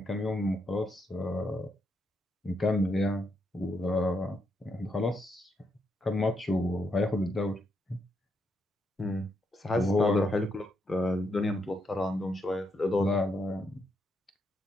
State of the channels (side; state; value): both; normal; correlation 0.79